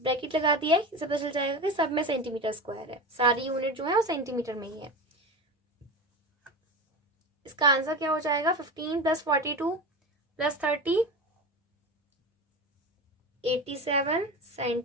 bracket लगा दिया है, इससे पता चल जाएगा कि सब में सेंटीमीटर स्क्वायर है, सारी यूनिट जो है वो सेंटीमीटर में ही है। इसका आंसर क्या हो जाएगा, 15 plus 42 plus 30 87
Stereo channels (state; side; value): normal; both; correlation 0.26